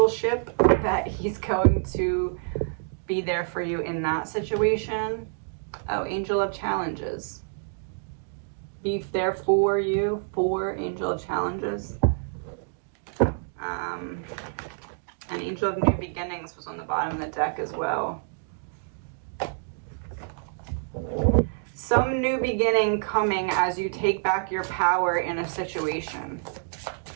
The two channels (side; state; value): left; silent; digital silence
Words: that he's going to be there for you in that situation. Oh, angel of challenges. Be there for you, for angel of challenges. An angel of new beginnings was on the bottom of the deck as well. Some new beginning coming as you take back your power in a situation.